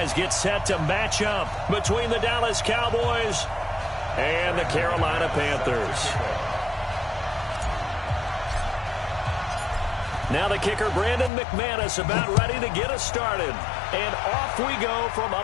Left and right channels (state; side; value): drops out; right; at 11.3 s